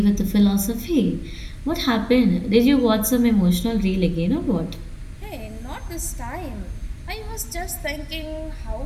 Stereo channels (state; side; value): identical; both; correlation 1.00